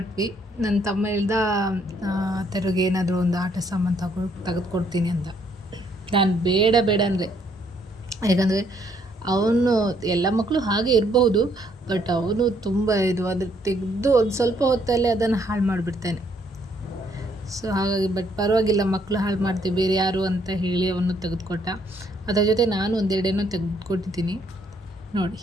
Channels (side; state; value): both; normal; correlation 0.69